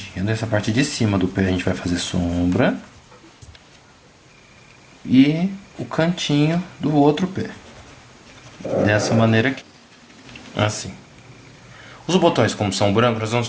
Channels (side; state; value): both; identical; correlation 1.00